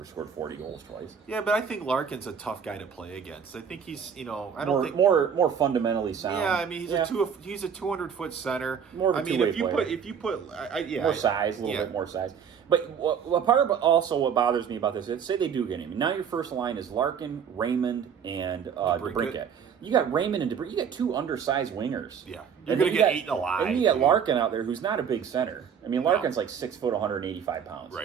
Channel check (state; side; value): quieter; left; 7.3 dB